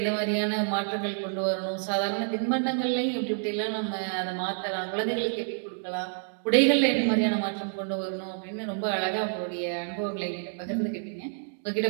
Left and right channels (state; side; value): silent; left; digital silence